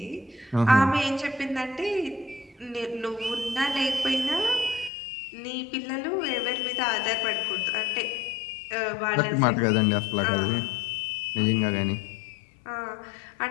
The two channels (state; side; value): drops out; right; at 4.9 s